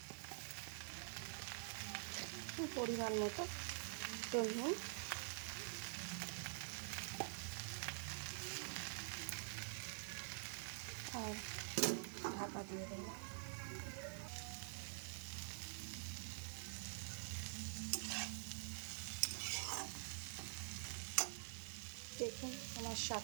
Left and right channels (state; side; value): silent; left; digital silence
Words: পরিমাণ মতো নুন, আর ঢাকা দিয়ে দেবো। দেখুন আমার